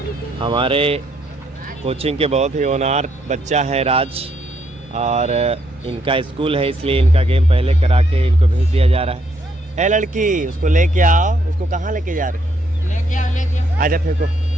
हमारे कोचिंग के बहुत ही होनहार बच्चा है राज, और इनका स्कूल है इसलिए इनका गेम पहले करा के इनको भेज दिया जा रहा है। ए लड़की, उसको लेके आओ। उसको कहाँ लेके जा रहे? लेके आओ। आजा फेंको।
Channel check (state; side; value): normal; both; correlation 0.73